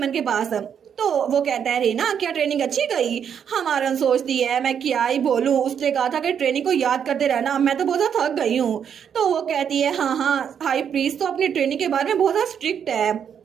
के पास। तो वो कहता है रेना क्या ट्रेनिंग अच्छी गई? हमारन सोचती है मैं क्या ही बोलूं, उसने कहा था कि ट्रेनिंग को याद करते रहना, मैं तो बहुत ज्यादा थक गई हूँ। तो वो कहती है हाँ हाई प्रीस्ट तो अपनी ट्रेनिंग के बारे में बहुत ज्यादा स्ट्रिक्ट है।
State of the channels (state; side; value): quieter; left; 8.0 dB